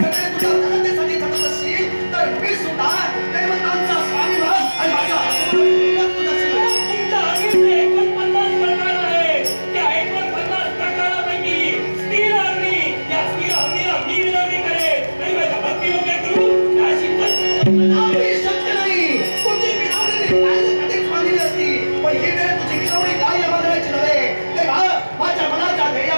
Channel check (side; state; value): both; inverted; correlation -1.00